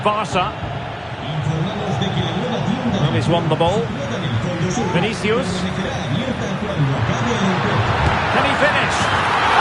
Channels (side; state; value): both; identical; correlation 1.00